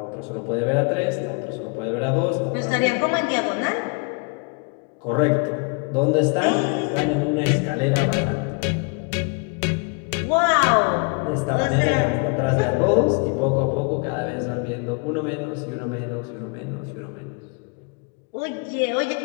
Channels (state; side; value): quieter; right; 34.3 dB